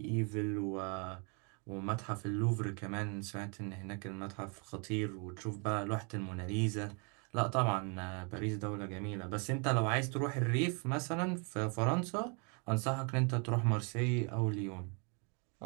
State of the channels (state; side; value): quieter; left; 35.5 dB